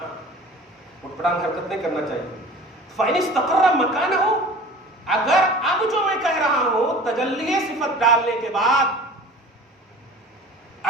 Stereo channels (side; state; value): both; normal; correlation 0.42